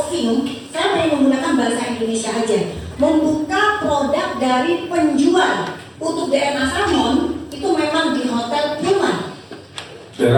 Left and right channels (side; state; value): both; identical; correlation 1.00